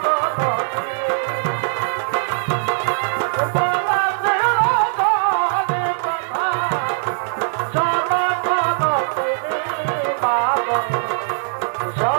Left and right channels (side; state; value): left; silent; 56 dB below the other